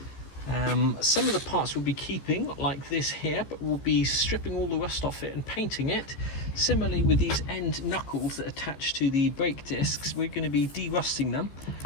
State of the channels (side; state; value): right; late; 15 ms